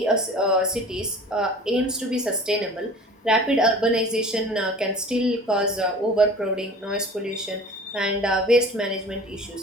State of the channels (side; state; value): both; normal; correlation 0.43